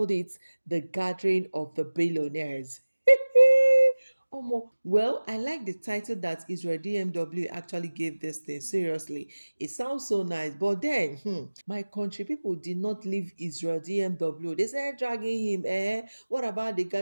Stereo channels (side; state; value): both; inverted; correlation -1.00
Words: it the gathering of the billionaires. Well, I like the title that Israel DMW actually gave this thing. Seriously, it sounds so nice. But then, my country people did not leave Israel DMW. They started dragging him. What about the